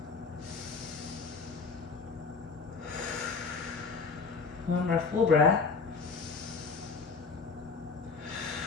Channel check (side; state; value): right; quieter; 4.8 dB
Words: One more full breath.